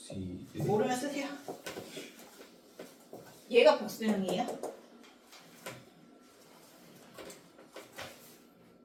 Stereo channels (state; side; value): identical; both; correlation 1.00